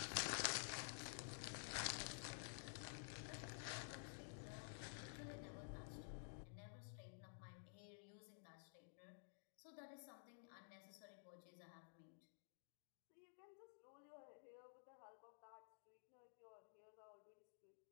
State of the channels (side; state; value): right; silent; digital silence